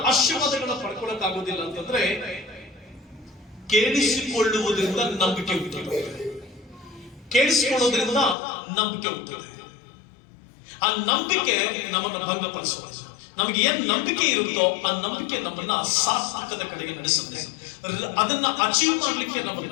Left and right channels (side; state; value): right; drops out; at 8.3 s